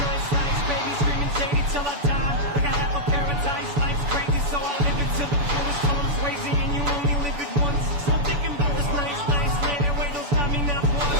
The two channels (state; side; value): late; left; 7.0 ms